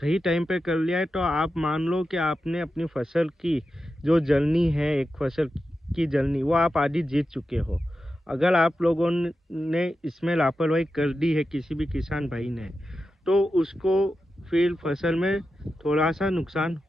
टाइम पे कर लिया है, तो आप मान लो कि आपने अपनी फसल की जो जलनी है, एक फसल की जलनी, वो आप आधी जीत चुके हो। अगर आप लोगों ने इसमें लापरवाही कर दी है, किसी भी किसान भाई ने, तो उसको फिर फसल में थोड़ा सा नुकसान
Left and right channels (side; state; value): both; normal; correlation 0.91